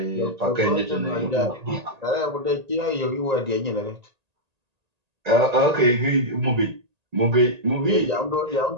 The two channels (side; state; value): left; late; 1.8 ms